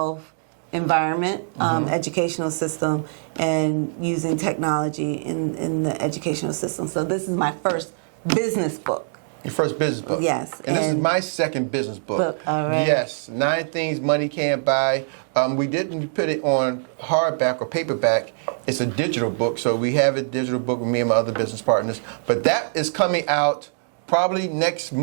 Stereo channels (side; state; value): left; silent; 63 dB below the other